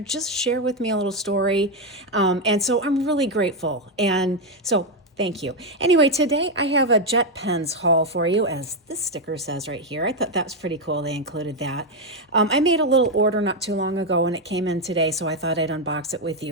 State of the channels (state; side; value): normal; both; correlation 0.05